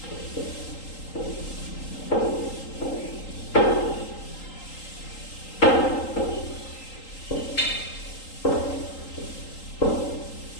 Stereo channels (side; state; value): right; late; 3.8 ms